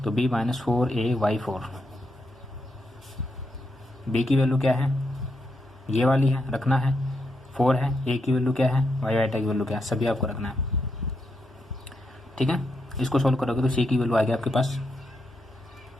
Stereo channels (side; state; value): both; normal; correlation 0.82